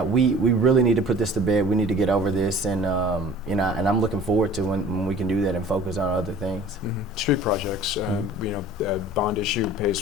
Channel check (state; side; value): normal; both; correlation 0.46